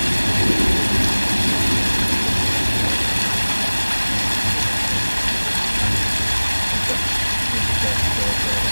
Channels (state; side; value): inverted; both; correlation -1.00